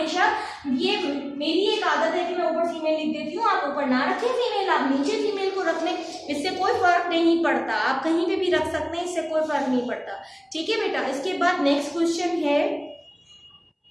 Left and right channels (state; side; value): identical; both; correlation 1.00